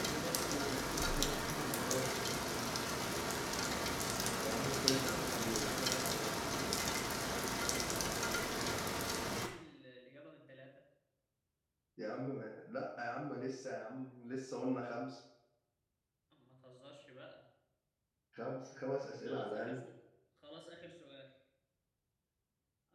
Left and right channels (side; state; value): both; identical; correlation 1.00